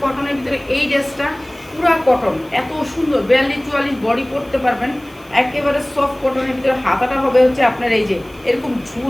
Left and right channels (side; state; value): right; noise; hiss, 27 dB below the sound